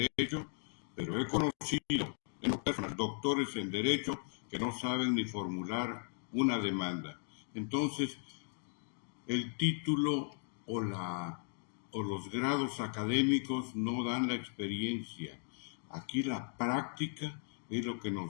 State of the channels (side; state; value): right; silent; 53 dB below the other